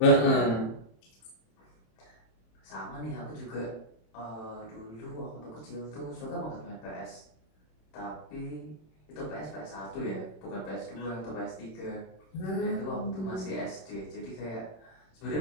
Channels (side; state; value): right; late; 26 ms